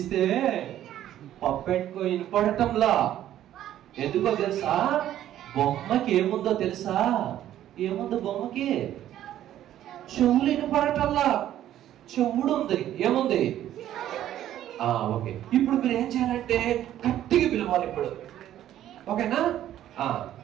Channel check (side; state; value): left; quieter; 12.1 dB